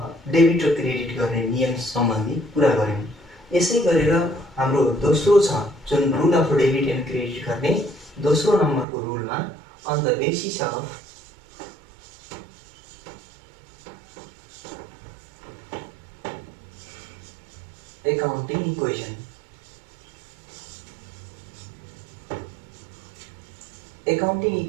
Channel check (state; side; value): drops out; left; at 8.8 s